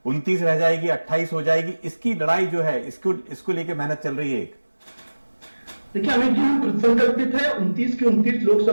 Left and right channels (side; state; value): both; inverted; correlation -1.00